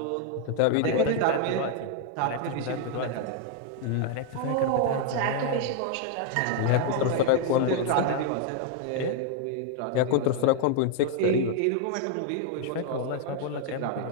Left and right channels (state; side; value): different; both; correlation 0.00